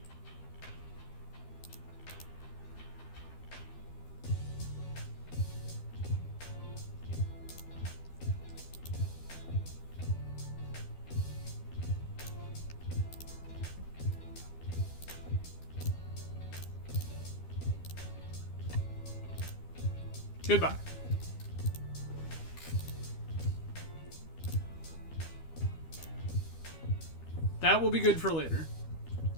Goodbye. That will be good for later.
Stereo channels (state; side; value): late; right; 12 ms